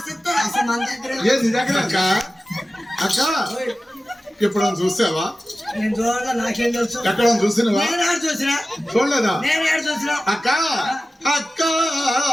ఇస్తారు. అసలు మన దగ్గర ఏ నీ దగ్గర అక్క అక్క ఇప్పుడు చూసావా? నేను చూడగా నాకేం తెలుసు. ఎక్కడ చూసినవా? నేను ఏడు చూసినా, చూడలేదా? నేను ఏడు చూసినా. అక్క అక్క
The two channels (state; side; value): normal; both; correlation 0.95